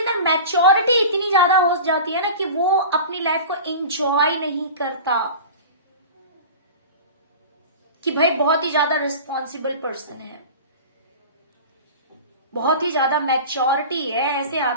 मैच्योरिटी इतनी ज्यादा हो जाती है ना कि वो अपनी लाइफ को एंजॉय नहीं करता, कि भाई बहुत ही ज्यादा रिस्पॉन्सिबल पर्सन है, बहुत ही ज्यादा मैच्योरिटी है। ऐसे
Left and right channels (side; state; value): both; inverted; correlation -0.35